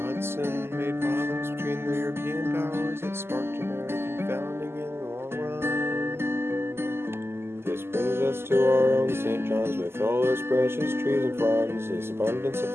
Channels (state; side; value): late; left; 0.12 ms